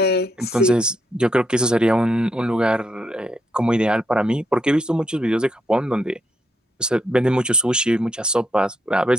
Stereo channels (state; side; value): normal; both; correlation 0.78